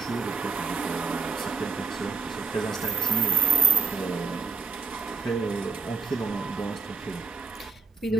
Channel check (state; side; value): quieter; left; 4.8 dB